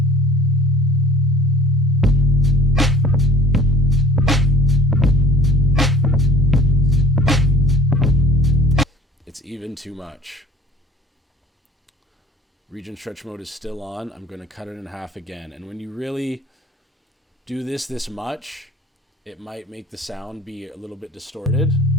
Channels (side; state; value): both; normal; correlation 0.48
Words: It's even too much. Region stretch mode is still on. I'm going to cut it in half again. And when you really do this much, it might make the sound be a little bit distorted.